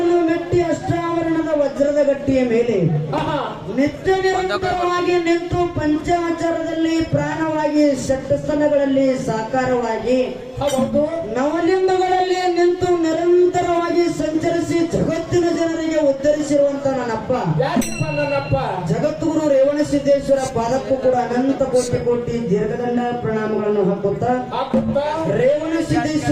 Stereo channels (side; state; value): both; identical; correlation 1.00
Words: ಮೆಟ್ಟಿ ಅಷ್ಟಾವರಣದ ವಜ್ರದ ಗಟ್ಟಿಯ ಮೇಲೆ ನಿತ್ಯ ನಿರಂತರವಾಗಿ ನಿಂತು ಪಂಚಾಚಾರದಲ್ಲಿ ಪ್ರಾಣವಾಗಿ ಷಟ್ಸ್ಥಲಗಳಲ್ಲಿ ಸಾಕಾರವಾಗಿ ನವಲಿಂಗಗಳಲ್ಲಿ ನಿಂತು ನಿರಂತರವಾಗಿ ಸಂಚರಿಸಿ ಜಗತ್ತಿನ ಜನರಿಗೆ ಉದ್ಧರಿಸಿರುವಂತ ನನ್ನಪ್ಪ ಜಗದ್ಗುರು ರೇವಣಸಿದ್ದೇಶ್ವರ ಪಾದಕ್ಕೂ ಕೂಡ ಅನಂತ ಕೋಟಿ ಕೋಟಿ ದೀರ್ಘದಂಡ ಪ್ರಣಾಮಗಳನ್ನು ಹಾಕುತ್ತಾ